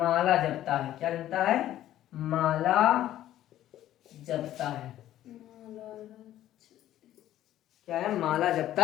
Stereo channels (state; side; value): quieter; right; 12.9 dB